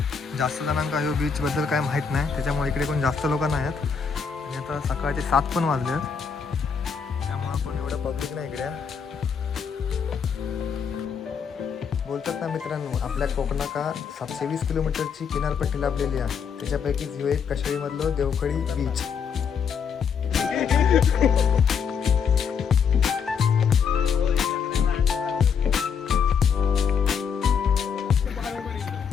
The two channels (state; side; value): quieter; right; 6.5 dB